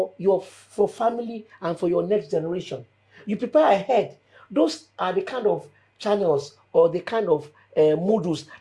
your for family and for your next generation. You prepare ahead. Those are the kind of channels or the kind of modules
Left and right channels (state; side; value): identical; both; correlation 1.00